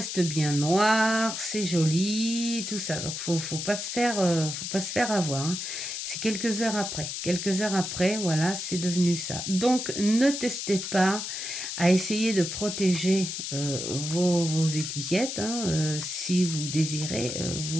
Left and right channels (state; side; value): noise; left; hiss, 5 dB below the sound